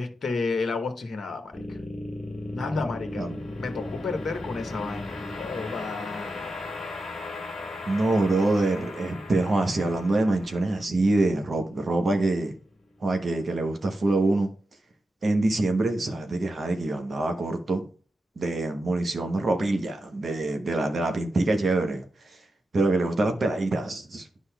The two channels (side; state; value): both; normal; correlation 0.89